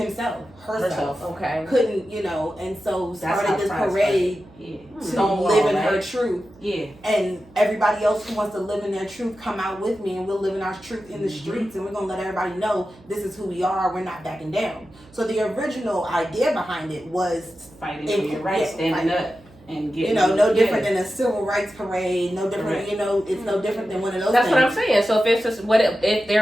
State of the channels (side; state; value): right; noise; hum, 26 dB below the sound